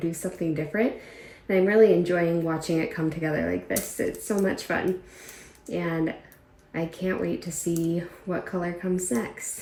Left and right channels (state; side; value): identical; both; correlation 1.00